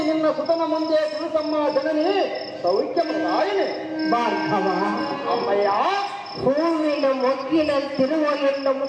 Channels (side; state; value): both; identical; correlation 1.00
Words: ನಿನ್ನ ಸುತನ ಮುಂದೆ ತಿಳಿಸಮ್ಮ ಜನನಿ ಸೌಖ್ಯಮದಾಯಿನಿ ಭಾರ್ಗವ ಅಮ್ಮಯ್ಯ. ಹೂವಿನ ಮೊಗ್ಗಿನಂತಿರುವ ಎನ್ನ